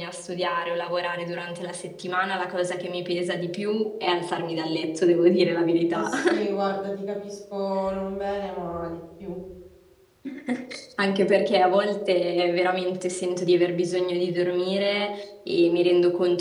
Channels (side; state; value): both; identical; correlation 1.00